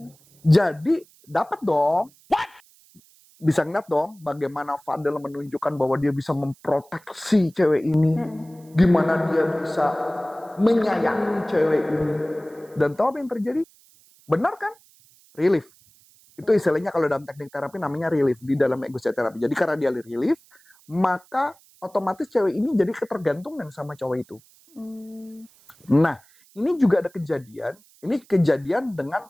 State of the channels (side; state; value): right; noise; hiss, 29 dB below the sound